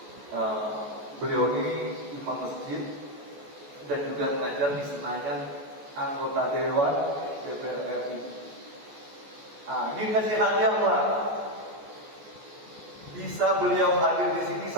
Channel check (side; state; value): left; late; 14 ms